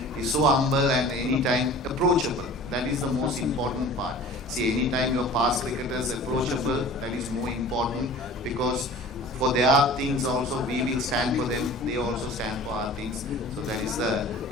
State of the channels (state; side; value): normal; both; correlation 0.43